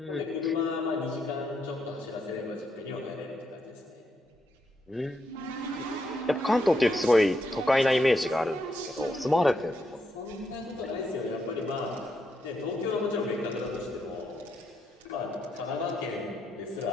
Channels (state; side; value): normal; both; correlation 0.79